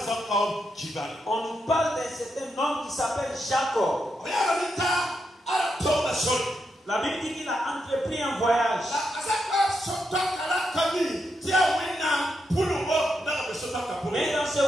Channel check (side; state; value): both; normal; correlation 0.83